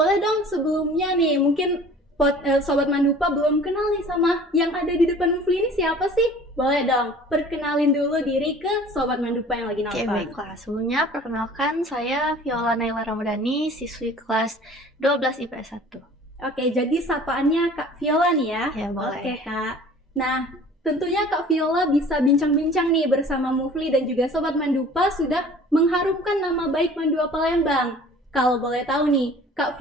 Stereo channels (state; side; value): normal; both; correlation 0.47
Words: dong sebelumnya nih, mungkin Sobat Mandupa belum kenal nih sama yang ada di depan Mufli ini siapa sih? Boleh dong, perkenalin dulu diri ke Sobat Mandupa yang lagi nonton. Oke, baiklah. Sebelumnya perkenalkan, saya Viola Naila Ramadhani, siswi kelas 12 IPS 1. Oke, jadi sapaannya Kak Viola nih ya? Ya, boleh. Oke Kak. Nah, tentunya Kak Viola bisa bincang-bincang nih bersama Mufli dan juga Sobat Mandupa sudah mengharumkan nama baik Mandua Palembang. Kalau boleh tahu nih, Kak